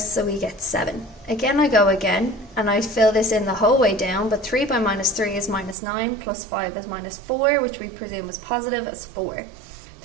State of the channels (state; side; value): drops out; left; at 5.8 s